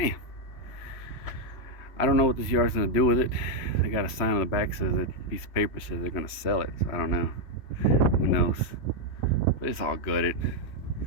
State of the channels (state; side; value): late; right; 3.1 ms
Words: I don't know what this yard's gonna do with it. They got a sign on the back that says a piece of paper says they're gonna sell it. So I don't know. Who knows? But it's all gutted.